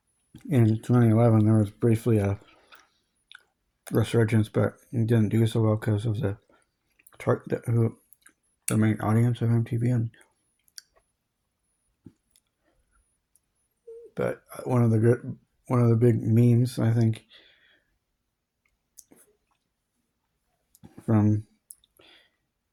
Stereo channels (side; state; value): both; identical; correlation 1.00